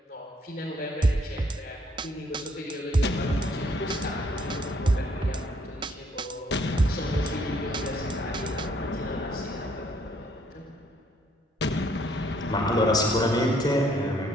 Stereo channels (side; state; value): both; normal; correlation 0.66